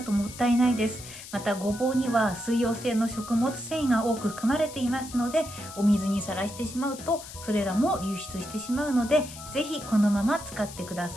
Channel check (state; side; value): noise; left; hiss, 14 dB below the sound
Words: ともったいないです。またごぼうには水溶性の食物繊維が多く含まれていますので、お水にさらしてしまうとそれらも流出してしまうので、ぜひこのまま使ってくだ